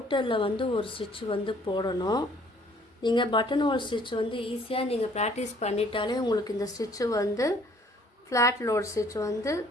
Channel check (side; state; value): both; normal; correlation 0.59